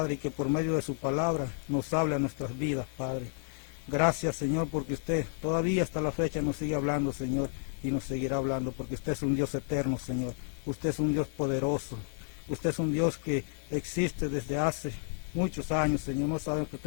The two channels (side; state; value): right; silent; digital silence